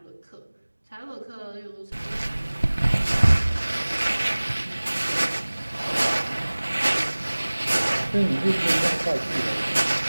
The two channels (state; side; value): inverted; both; correlation -1.00